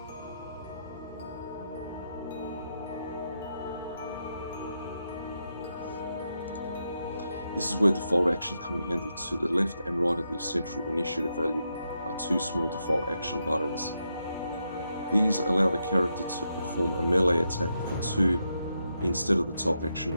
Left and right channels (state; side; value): inverted; both; correlation -0.83